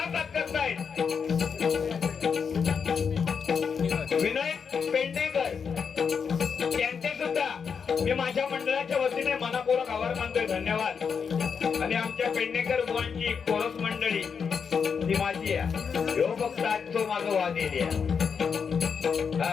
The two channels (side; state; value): right; quieter; 6.3 dB